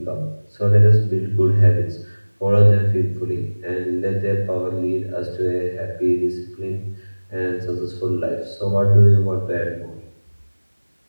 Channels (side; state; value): both; inverted; correlation -1.00